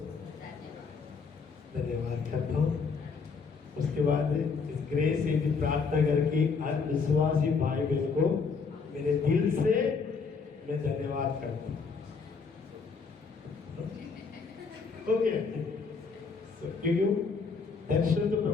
धन्यवाद करता हूँ। उसके बाद इस ग्रेस से भी प्रार्थना करके हर विश्वासी भाई बहन को मेरे दिल से मैं धन्यवाद करता हूँ। क्योंकि दर्शन तो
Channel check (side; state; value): right; quieter; 5.1 dB